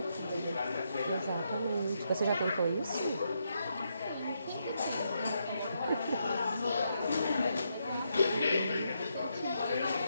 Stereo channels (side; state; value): both; inverted; correlation -0.80